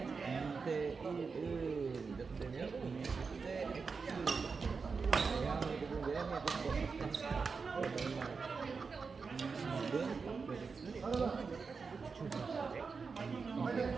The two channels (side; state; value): left; quieter; 5.0 dB